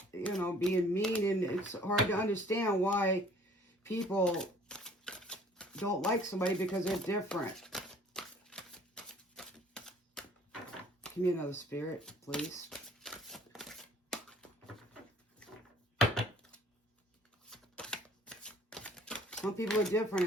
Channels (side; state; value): both; normal; correlation 0.55